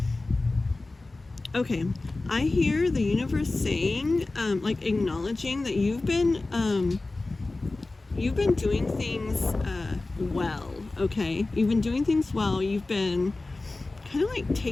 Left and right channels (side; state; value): right; quieter; 3.2 dB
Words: Okay, I hear the universe saying, like acknowledging that you've been doing things well. Okay, you've been doing things well. You've been kind of like